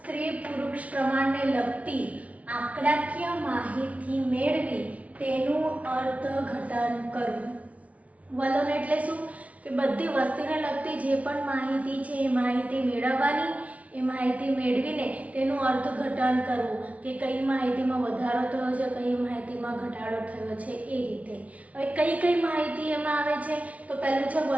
પુરુષ પ્રમાણને લગતી આંકડાકીય માહિતી મેળવી તેનું અર્થઘટન કરવું। વલણ એટલે શું કે બધી વસ્તીને લગતી જે પણ માહિતી છે એ માહિતી મેળવવાની, એ માહિતી મેળવીને તેનું અર્થઘટન કરવું કે કઈ માહિતીમાં વધારો થયો છે, કઈ માહિતીમાં ઘટાડો થયો છે, એ રીતે। હવે કઈ માહિતી એમાં આવે છે? તો પહેલું છે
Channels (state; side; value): late; left; 0.067 ms